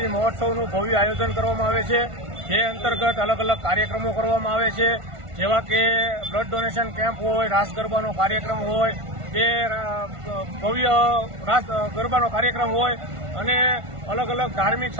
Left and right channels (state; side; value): late; left; 1.5 ms